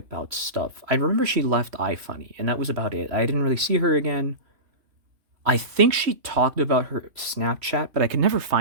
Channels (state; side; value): late; left; 3.1 ms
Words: stuff. I remember she left iFunny, and that was about it. I didn't really see her again. I think she talked about her Snapchat, but I could never